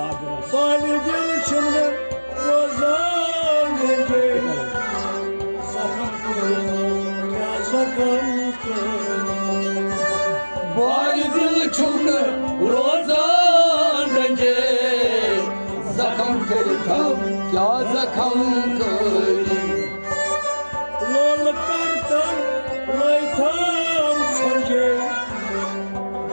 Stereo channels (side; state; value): both; inverted; correlation -1.00